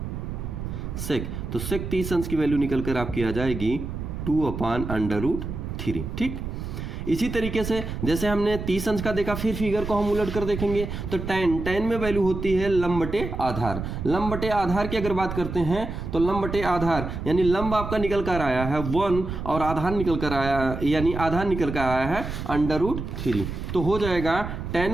सेक, तो सेक 30 अंश की वैल्यू निकल कर आपकी आ जाएगी 2/√3, ठीक। इसी तरीके से जैसे हमने 30 अंश का देखा, फिर फिगर को हम उलट कर देखेंगे तो tan में वैल्यू होती है लंब बटे आधार। लंब बटे आधार की अगर बात करते हैं तो लंब बटे आधार यानी लंब आपका निकल कर आया है 1 और आधार निकल कर आया, यानी आधार निकल कर आया है √3, तो हो जाएगा tan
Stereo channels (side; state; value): right; noise; rumble, 6 dB below the sound